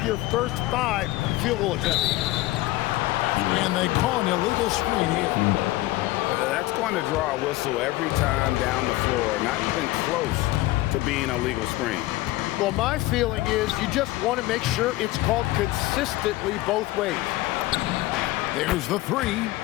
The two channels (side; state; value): right; quieter; 18.0 dB